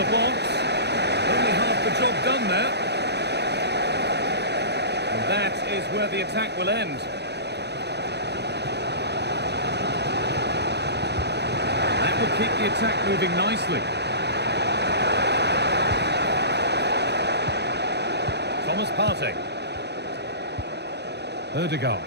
box. Only half the job done there. And that is where the attack will end. That will keep the attack moving nicely. Thomas Partey. Ødegaard.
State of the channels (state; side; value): late; left; 0.49 ms